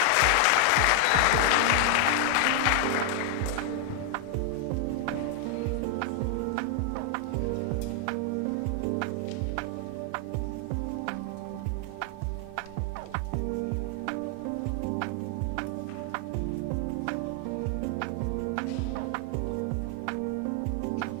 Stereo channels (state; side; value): different; both; correlation 0.00